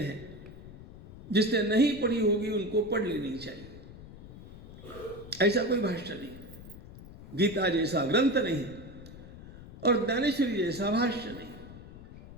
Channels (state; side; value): noise; left; rumble, 16 dB below the sound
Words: है, जिसने नहीं पढ़ी होगी उनको पढ़ लेनी चाहिए। ऐसा कोई भाष्य नहीं, गीता जैसा ग्रंथ नहीं, और ज्ञानेश्वरी जैसा भाष्य नहीं।